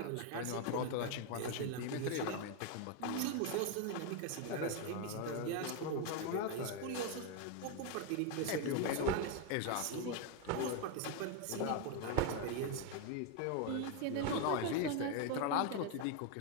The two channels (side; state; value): both; different; correlation 0.01